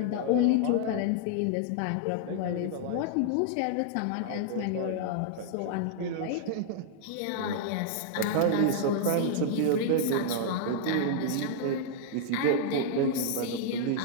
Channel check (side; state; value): both; different; correlation -0.01